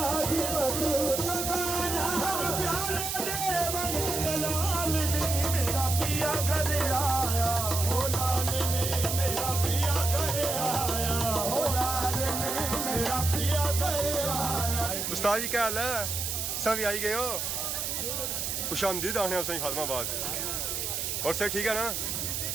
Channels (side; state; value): right; noise; hiss, 2 dB below the sound